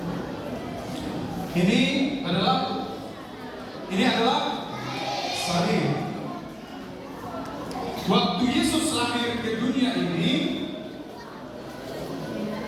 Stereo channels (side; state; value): both; identical; correlation 1.00